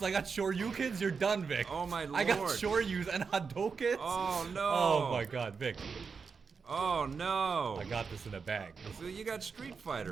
I got Shoryukens. You're done, Vic. Oh, my Lord. I got Shoryus and Hadokens. Oh, no. Oh, my God, Vic. Oh, no. I got this in a bag. So you got Street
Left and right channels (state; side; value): quieter; left; 5.4 dB